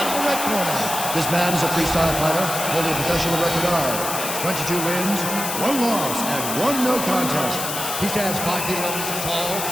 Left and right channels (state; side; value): noise; left; hiss, 4 dB below the sound